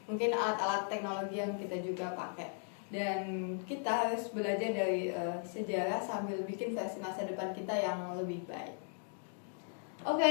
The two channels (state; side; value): silent; right; 53 dB below the other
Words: mungkin alat-alat teknologi yang kita juga pakai. Dan kita harus belajar dari sejarah sambil bikin versi masa depan kita yang lebih baik. Oke,